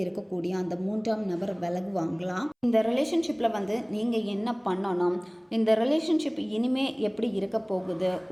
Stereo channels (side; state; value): both; identical; correlation 1.00